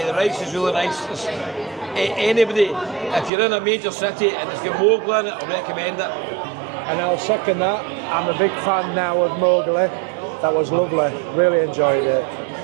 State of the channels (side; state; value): left; drops out; at 3.3 s